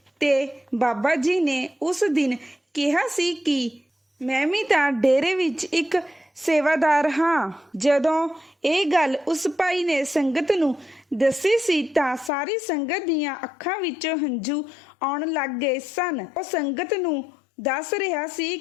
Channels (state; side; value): drops out; right; at 12.3 s